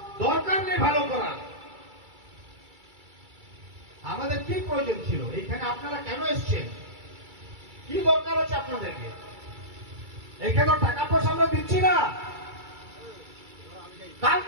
দরকার নেই ভালো করার। আমাদের কি প্রয়োজন ছিল? এখানে আপনারা কেন এসছেন? কি দরকার আছে আপনাদেরকে? এখানে টাকা পয়সা আমরা দিচ্ছি না।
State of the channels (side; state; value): left; late; 2.3 ms